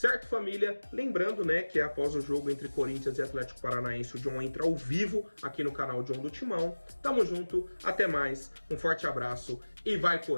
família? Lembrando, né, que após o jogo entre Corinthians e Atlético Paranaense, o John entra ao vivo aqui no canal John do Timão. Tamo junto, até mais, um forte abraço e vai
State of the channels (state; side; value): inverted; both; correlation -1.00